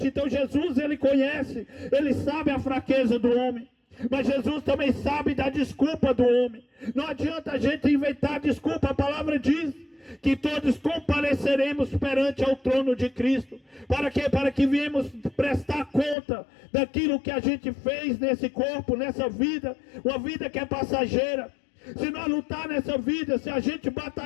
Então Jesus, ele conhece, ele sabe a fraqueza do homem. Mas Jesus também sabe da desculpa do homem. Não adianta a gente inventar desculpa. A palavra diz que todos compareceremos perante ao trono de Cristo. Para quê? Para que viemos prestar conta daquilo que a gente fez nesse corpo, nessa vida. Uma vida que é passageira. Se nós lutar nessa vida, se a gente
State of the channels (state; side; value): drops out; right; at 16.2 s